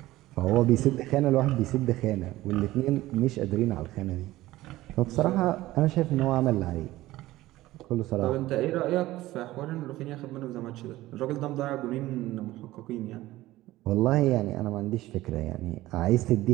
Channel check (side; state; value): left; quieter; 16.8 dB